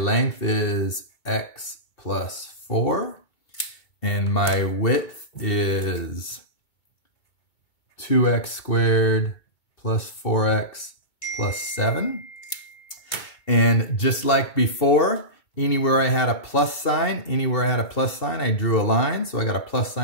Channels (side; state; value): right; late; 2.2 ms